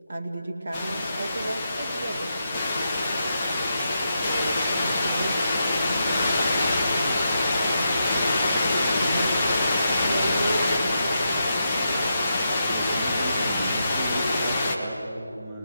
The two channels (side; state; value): both; inverted; correlation -0.84